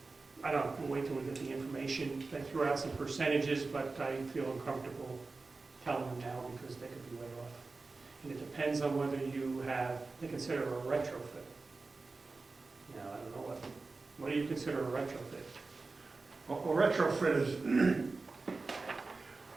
I don't know, we'll wait till we get the information. They threw out some percentages, but I feel uncomfortable telling them now because they could be way off. And it depends on whether they consider a retrofit. Now, I don't know what do you consider a retrofit? Well, a retrofit is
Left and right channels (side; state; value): left; quieter; 3.8 dB